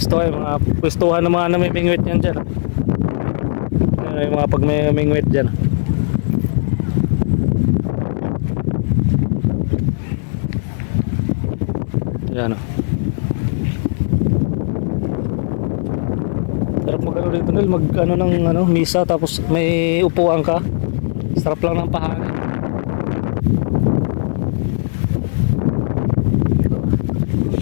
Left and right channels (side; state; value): right; silent; digital silence